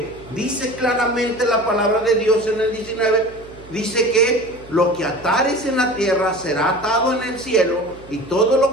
dice claramente la palabra de Dios en el 19, dice que lo que atares en la tierra será atado en el cielo, y todo lo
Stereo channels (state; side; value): noise; right; hum, 21 dB below the sound